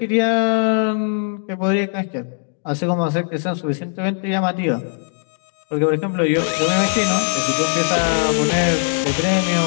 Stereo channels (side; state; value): right; silent; digital silence